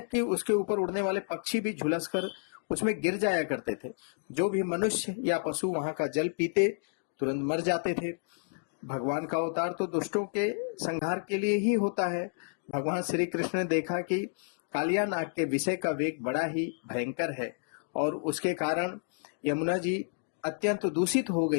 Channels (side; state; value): right; silent; digital silence